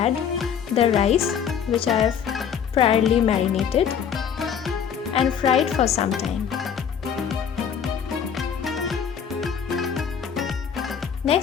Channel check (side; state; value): right; quieter; 7.7 dB